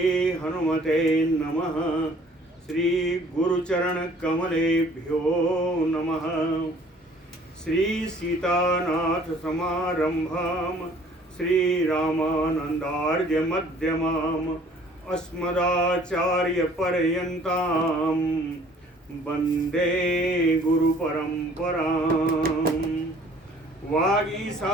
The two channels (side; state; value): both; normal; correlation 0.55